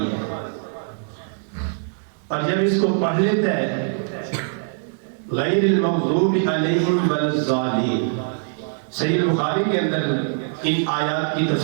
ہے۔ اور جب اس کو پڑھ لیتا ہے غیر المغضوب علیہم ولا الضالین، صحیح بخاری کے اندر ان آیات کی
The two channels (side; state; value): left; silent; 64 dB below the other